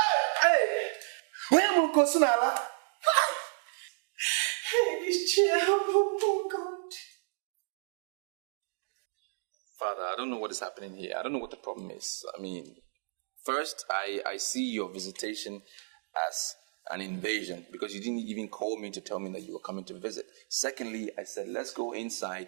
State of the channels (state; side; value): silent; left; digital silence